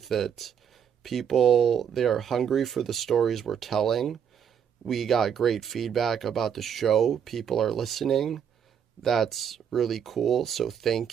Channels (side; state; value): left; quieter; 8.1 dB